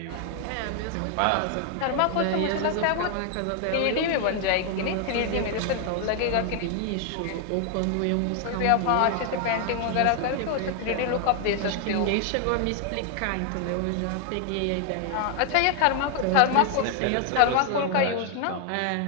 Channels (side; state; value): both; different; correlation 0.00